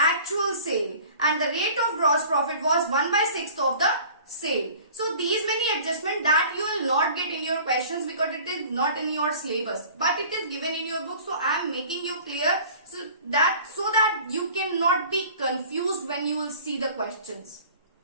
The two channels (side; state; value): both; inverted; correlation -0.46